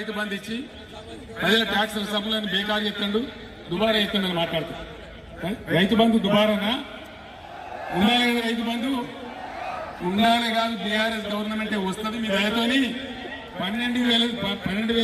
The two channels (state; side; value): identical; both; correlation 1.00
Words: బంధు ఇచ్చి ప్రజల ట్యాక్స్ సభలను బేకారు చేస్తాడు, దుబారా చేస్తాడని మాట్లాడతాడు. రైతు బంధు దుబారానా? ఉండాలి కదా రైతు బంధు, ఉండాలి కాదు. బీఆర్ఎస్ గవర్నమెంటే వస్తుంది మీ దయతోని.